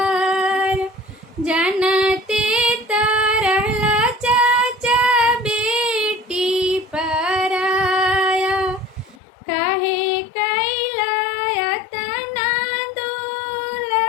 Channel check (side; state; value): right; drops out; at 9.2 s